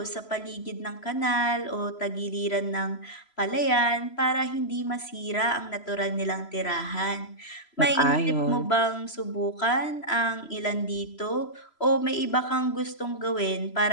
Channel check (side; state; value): right; late; 3.0 ms